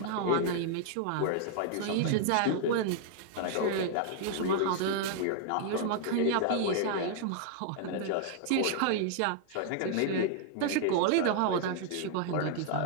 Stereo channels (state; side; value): different; both; correlation -0.01